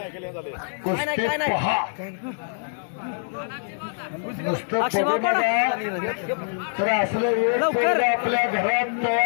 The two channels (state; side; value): silent; right; digital silence